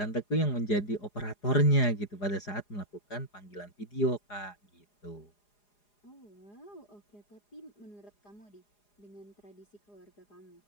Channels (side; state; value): right; late; 4.9 ms